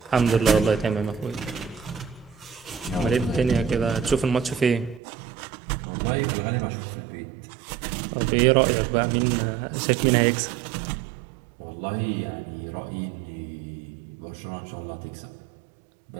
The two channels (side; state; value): left; drops out; at 5.0 s